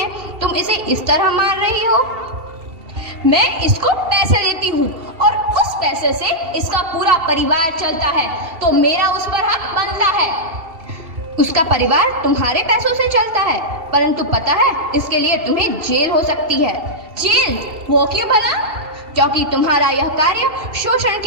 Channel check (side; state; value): left; late; 2.8 ms